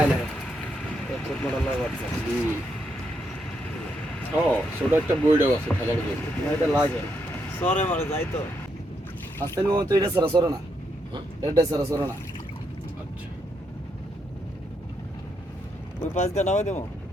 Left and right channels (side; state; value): both; normal; correlation 0.79